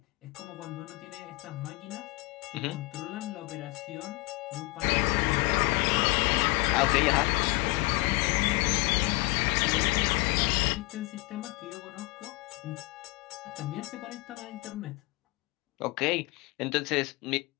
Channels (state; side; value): quieter; right; 23.6 dB